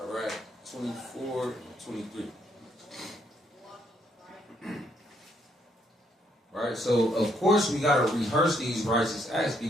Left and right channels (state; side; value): normal; both; correlation 0.72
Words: 24 and 23. Right? So, of course, we got to rehearse these righteous acts